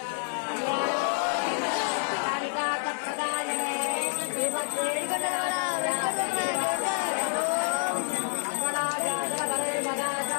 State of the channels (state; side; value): silent; right; 59 dB below the other